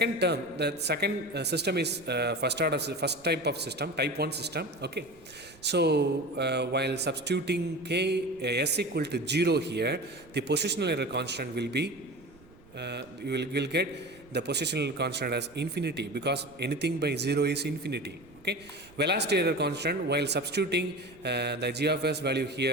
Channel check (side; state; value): right; noise; rumble, 25 dB below the sound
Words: term, the second system is first type of system, type 1 system. Okay, so while substituting s equal to 0 here, the positional error constant will be you will get the positional constant as infinity, because anything by 0 is infinity. Okay, velocity error constant, while substituting the g of s value